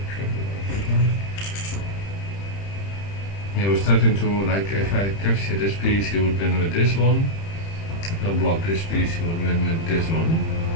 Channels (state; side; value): late; right; 30 ms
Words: Yeah, we're starting to, like, if I capture this piece, he would win with this one. If I block this piece, he would win with this one.